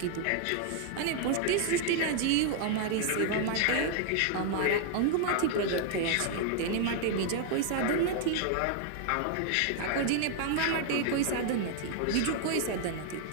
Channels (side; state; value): both; different; correlation 0.00